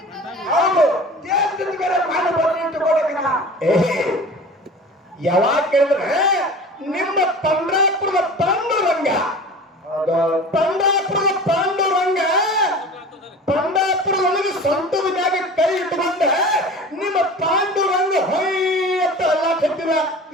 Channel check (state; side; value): normal; both; correlation 0.38